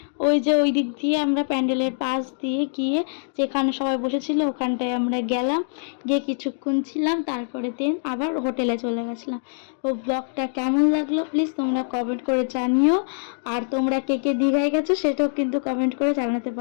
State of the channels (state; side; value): silent; right; digital silence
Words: ওই যে ওই দিক দিয়ে আমরা প্যান্ডেলের পাশ দিয়ে গিয়ে যেখানে সবাই বসেছিল ওখানটায় আমরা গেলাম, গিয়ে কিছুক্ষণ ছিলাম, তারপরে দেন আবার হোটেলে চলে গেছিলাম। তো ব্লগটা কেমন লাগলো প্লিজ তোমরা কমেন্ট করে জানিও। আর তোমরা কে কে দীঘায় গেছো সেটাও কিন্তু কমেন্ট করে জানাতে